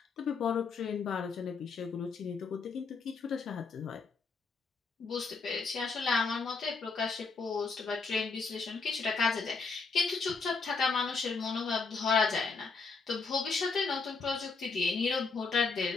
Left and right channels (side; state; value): right; quieter; 4.5 dB